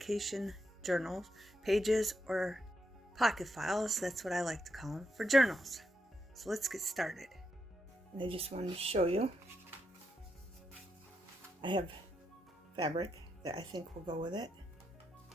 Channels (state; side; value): normal; both; correlation 0.83